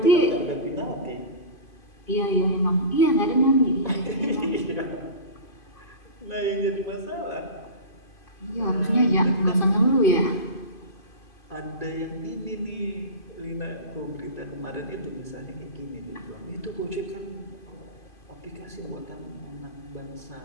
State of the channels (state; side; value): late; right; 2.5 ms